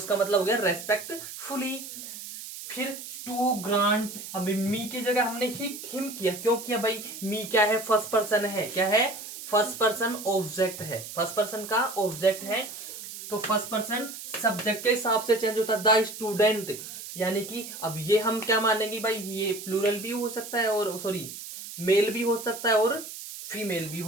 मतलब हो गया रेस्पेक्टफुली। फिर टू ग्रांट, अब मी की जगह हमने हिम किया, क्यों किया भाई, मी क्या है, फर्स्ट पर्सन है, क्या है, फर्स्ट पर्सन ऑब्जेक्ट है, फर्स्ट पर्सन का ऑब्जेक्ट है, तो फर्स्ट पर्सन सब्जेक्ट के हिसाब से चेंज होता है, द स्टूडेंट। यानी कि अब ये हम क्या मानेंगे भाई, ये प्लूरल भी हो सकता है, और सॉरी मेल भी हो सकता है और फीमेल भी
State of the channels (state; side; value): noise; right; hiss, 11 dB below the sound